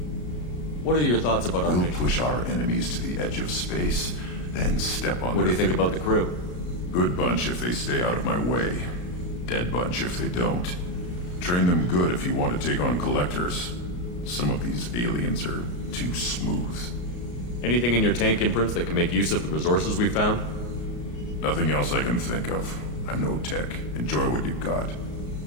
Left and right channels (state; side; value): late; right; 33 ms